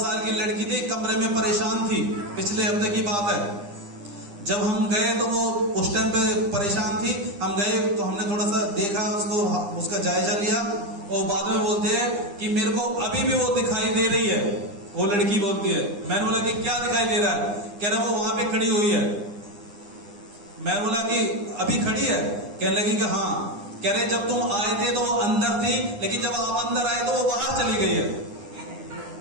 की लड़की थी, कमरे में परेशान थी, पिछले हफ्ते की बात है। जब हम गए तो वो उस टाइम पे परेशान थी। हम गए तो हमने थोड़ा सा देखा उसको, उसका जायजा लिया, और बाद में बोलते हैं कि मेरे को अभी भी वो दिखाई दे रही है। वो लड़की बोलती है, मैंने बोला कि क्या दिखाई दे रहा है? कह रहा वो वहां पे खड़ी हुई है। मैं बोला कि अभी खड़ी है? कहने लगी कि हाँ। कह रहे जब तुम आए थे तो वो अंदर थी, लेकिन जब आप अंदर आए तो वो बाहर चली गई है।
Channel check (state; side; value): late; left; 9.8 ms